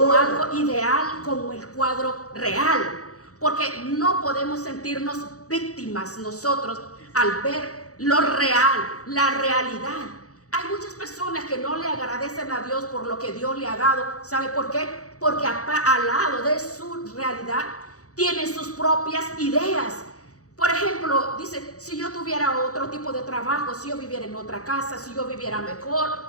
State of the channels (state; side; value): late; right; 0.66 ms